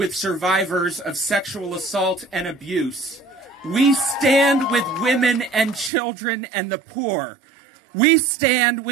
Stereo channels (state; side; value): drops out; left; at 5.9 s